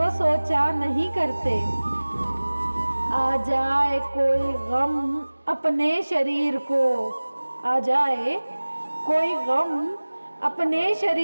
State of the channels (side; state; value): both; inverted; correlation -1.00